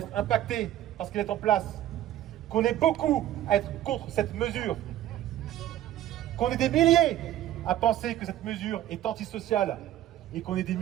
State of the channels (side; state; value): left; quieter; 12.8 dB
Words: impacté parce qu'elle est en place, qu'on est beaucoup à être contre cette mesure, qu'on est des milliers à penser que cette mesure est antisociale, et qu'on est des